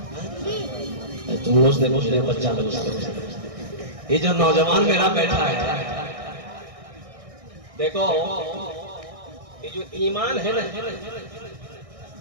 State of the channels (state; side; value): late; left; 1.6 ms